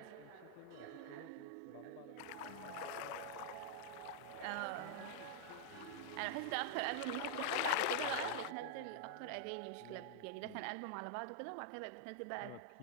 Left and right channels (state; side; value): different; both; correlation -0.01